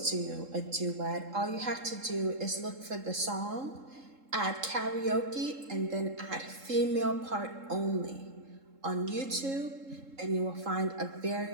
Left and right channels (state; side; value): late; left; 3.7 ms